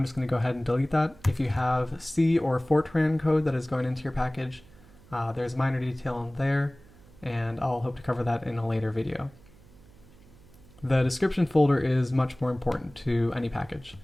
just going to go ahead and delete that. If you have C or Fortran code that is going into your package, there's minor detail in there, and I'll hope to cover that in a later video. The description folder is much more important to any package.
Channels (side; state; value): right; noise; hum, 24 dB below the sound